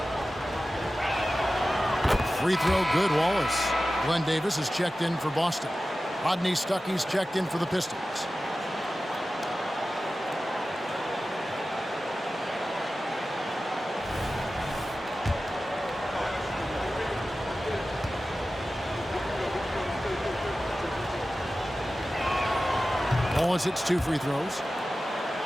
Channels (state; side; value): normal; both; correlation 0.95